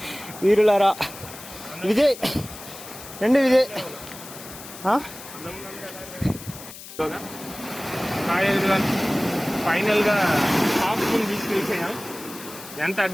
వీరులారా. విజయ్ రండి, విజయ్. ఫైనల్గా హాఫ్ మూన్ బీచ్కి వెళ్ళిపోయాం. ఎంత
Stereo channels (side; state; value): left; noise; hiss, 15 dB below the sound